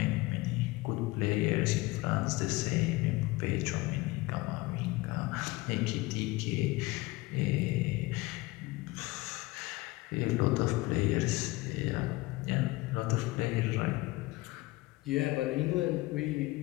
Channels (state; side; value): quieter; right; 21.0 dB